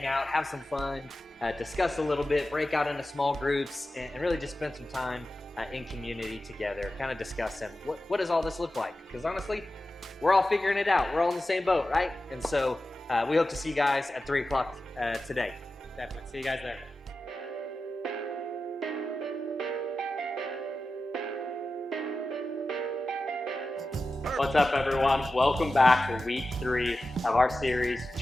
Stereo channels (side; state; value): both; normal; correlation 0.93